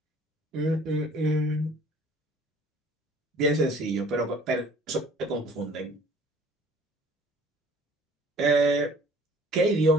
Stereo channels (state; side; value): normal; both; correlation 0.53